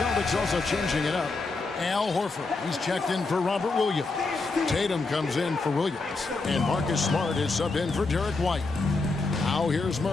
also changing it up. Al Horford, he's checked in for Robert Williams. Tatum comes in for Williams. And Marcus Smart is subbed in for Derek White. Now here's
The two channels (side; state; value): right; quieter; 3.7 dB